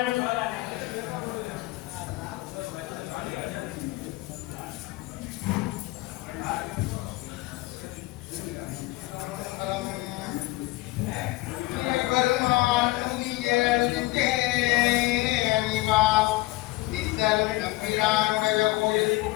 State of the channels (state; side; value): quieter; right; 20.0 dB